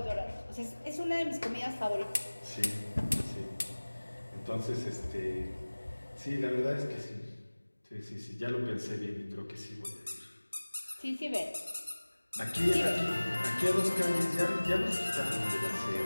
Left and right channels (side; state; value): both; inverted; correlation -1.00